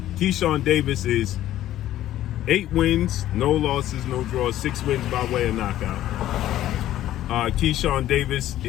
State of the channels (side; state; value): right; quieter; 13.2 dB